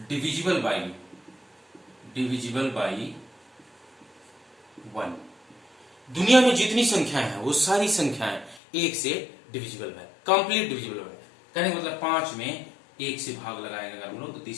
divisible by 1। दुनिया में जितनी संख्याएं हैं वो सारी संख्याएं 1 से डिविजिबल है, कंप्लीट डिविजिबल है। कहने का मतलब 5 में 1 से भाग लगाएंगे अगर हम लोग तो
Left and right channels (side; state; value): right; drops out; at 8.6 s